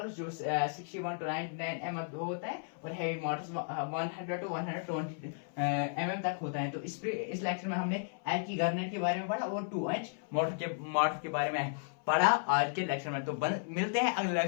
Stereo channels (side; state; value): right; silent; 55 dB below the other